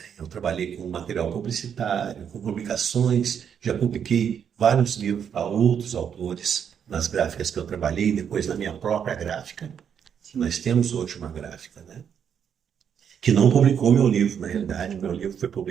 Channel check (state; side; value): quieter; left; 8.0 dB